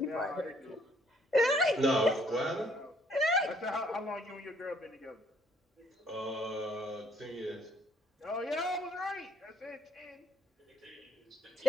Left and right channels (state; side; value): normal; both; correlation 0.65